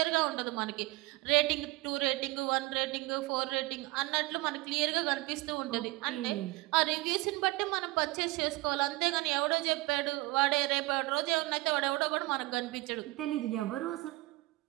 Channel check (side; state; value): left; quieter; 21.5 dB